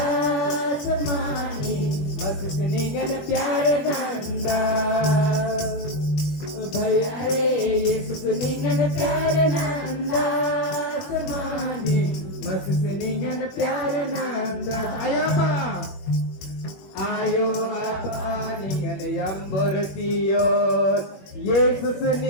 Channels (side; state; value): right; late; 21 ms